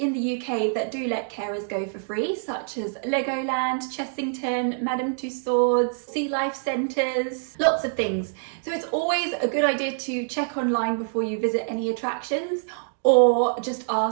the UK that do let carers go for free, such as Legoland, Chessington, Madame Tussauds, Sea Life Centres, lots of things. So it's always a good idea to check online before you visit any attractions, or just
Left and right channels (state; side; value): silent; left; digital silence